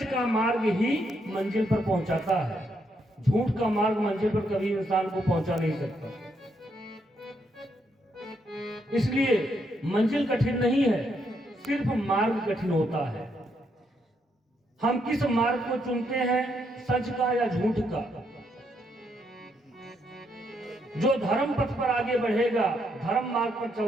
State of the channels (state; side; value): normal; both; correlation 0.76